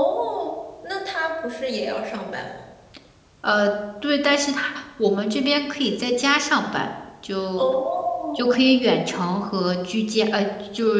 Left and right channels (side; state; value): both; identical; correlation 1.00